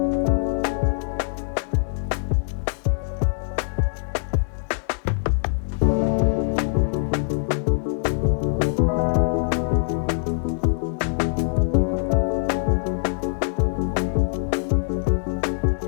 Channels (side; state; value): right; silent; 60 dB below the other